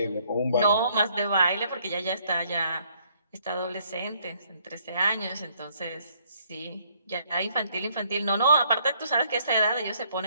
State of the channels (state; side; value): inverted; both; correlation -0.67